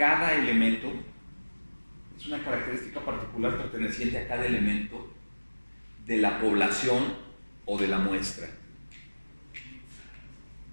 elemento. Es una característica particular perteneciente a cada elemento de la población o de la muestra.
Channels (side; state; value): both; inverted; correlation -1.00